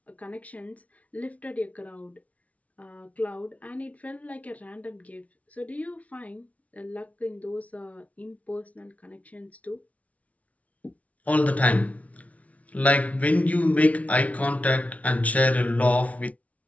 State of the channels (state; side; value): late; right; 0.068 ms